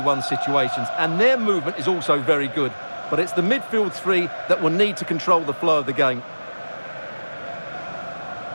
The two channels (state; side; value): inverted; both; correlation -1.00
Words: situations, and their movement is also very good. But it's the midfield three that will need to control the flow of the game.